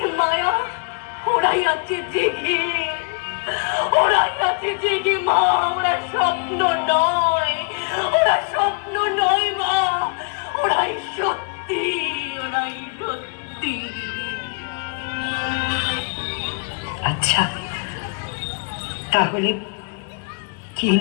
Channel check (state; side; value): quieter; right; 36.4 dB